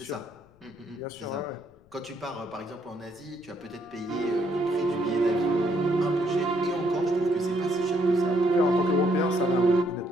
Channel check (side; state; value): left; noise; rumble, 30 dB below the sound